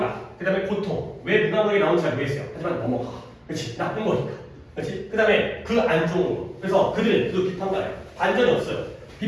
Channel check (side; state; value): both; identical; correlation 1.00